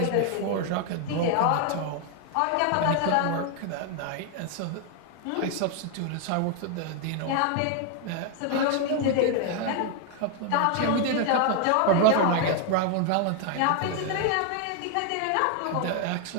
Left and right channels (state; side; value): different; both; correlation 0.01